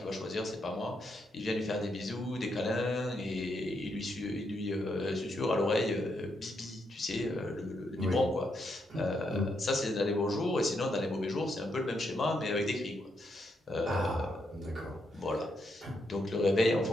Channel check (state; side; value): normal; both; correlation 0.79